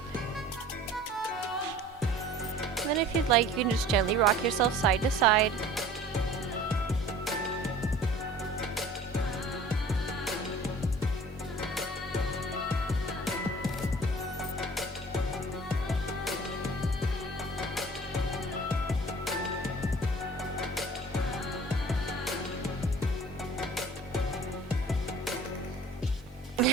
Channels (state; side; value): normal; both; correlation 0.47